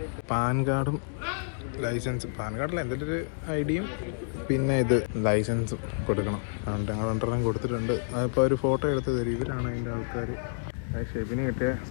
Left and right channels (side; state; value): right; silent; digital silence